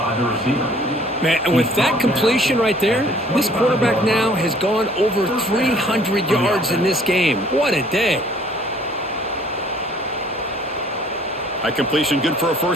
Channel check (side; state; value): both; normal; correlation 0.57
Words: Man, and with that completion right there, this quarterback now has gone over 300 yards in this game. What a day. High completion, good for a